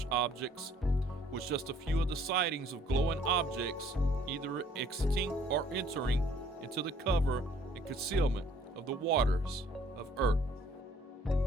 Objects, was just a few of the sightings of glowing objects either exiting or entering into the cover and concealment of the waters of Earth.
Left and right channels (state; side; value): normal; both; correlation 0.59